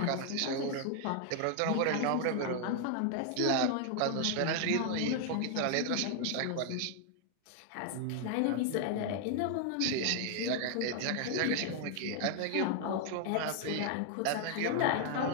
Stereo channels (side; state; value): both; different; correlation 0.00